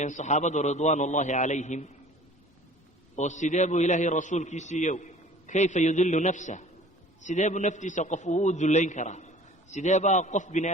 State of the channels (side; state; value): both; normal; correlation 0.47